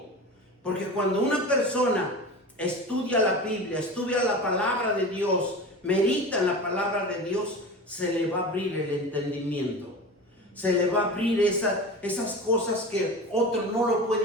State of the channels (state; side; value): normal; both; correlation 0.31